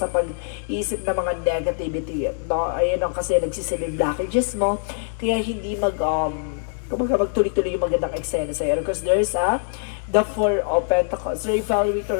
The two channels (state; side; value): silent; right; digital silence